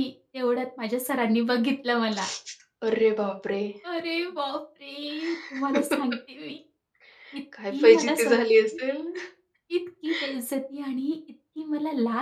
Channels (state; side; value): identical; both; correlation 1.00